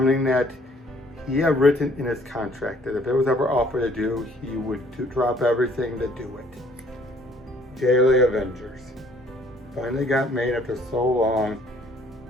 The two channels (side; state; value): both; normal; correlation 0.60